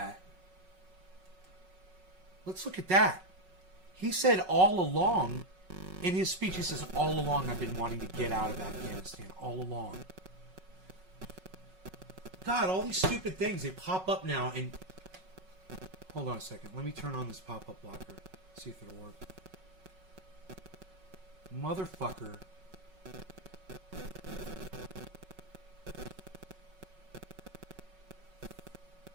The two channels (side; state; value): left; late; 5.4 ms